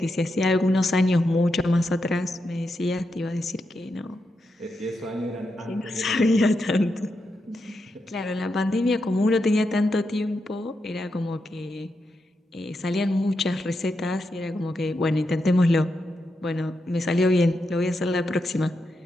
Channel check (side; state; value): both; normal; correlation 0.85